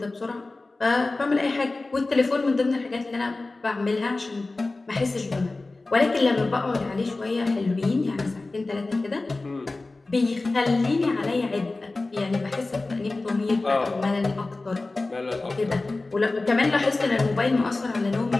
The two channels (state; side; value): quieter; right; 3.3 dB